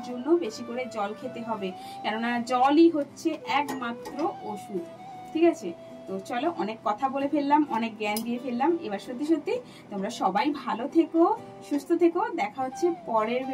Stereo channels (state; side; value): identical; both; correlation 1.00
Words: জন্য বেশি করে জল খেতে হবে, কেননা জলই হচ্ছে একমাত্র ওষুধ। ঠিক আছে, তো চলো, অনেক কথা বলে ফেললাম, অনেক জ্ঞান দিয়ে ফেললাম। এবার সত্যি সত্যি তোমরা সবাই ভালো থেকো, সুস্থ থেকো। দেখা হচ্ছে পরের